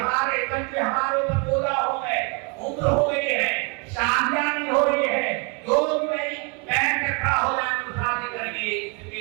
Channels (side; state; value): left; quieter; 33.3 dB